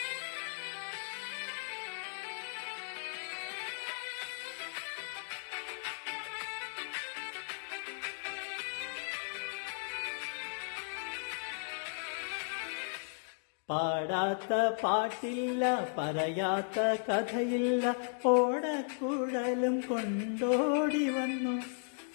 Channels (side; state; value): right; silent; digital silence